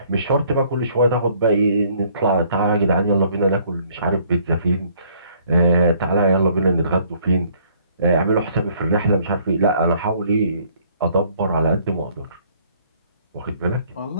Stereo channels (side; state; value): both; inverted; correlation -0.61